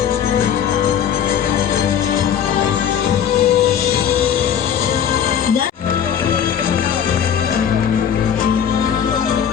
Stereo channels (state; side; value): quieter; right; 8.7 dB